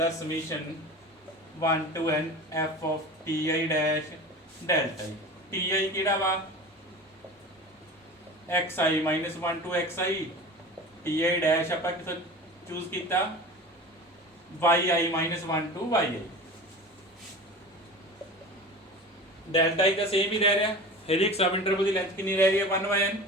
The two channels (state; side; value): normal; both; correlation 0.35